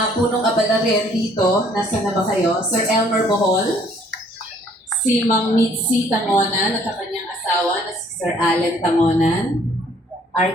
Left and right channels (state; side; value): normal; both; correlation 0.60